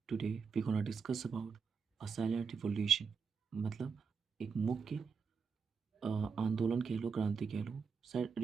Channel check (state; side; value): quieter; left; 5.7 dB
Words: Today we're gonna discuss about a silent revolution. मतलब एक मुख्य आंदोलन कह लो, क्रांति कह लो।